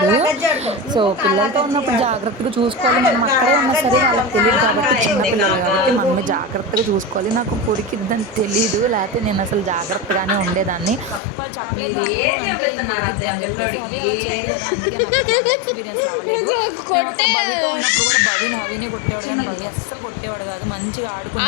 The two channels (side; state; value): right; drops out; at 11.2 s